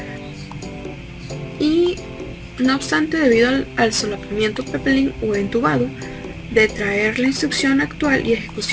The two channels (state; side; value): identical; both; correlation 1.00